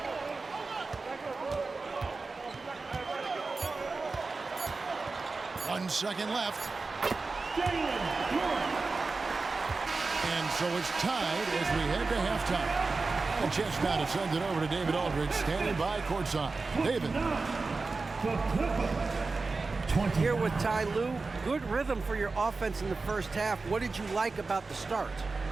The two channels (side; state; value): left; quieter; 3.9 dB